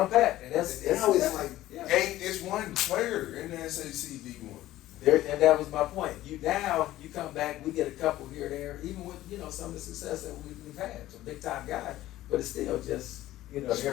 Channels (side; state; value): right; quieter; 15.1 dB